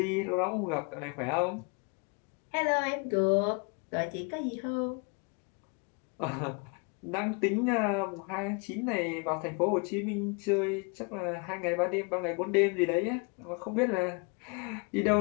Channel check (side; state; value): right; quieter; 34.1 dB